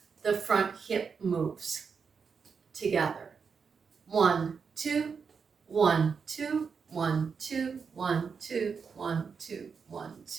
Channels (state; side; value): quieter; left; 5.8 dB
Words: the front hip moves together. 1, 2, 1, 2, 1, 2, 1, 2, 1, 2, 1,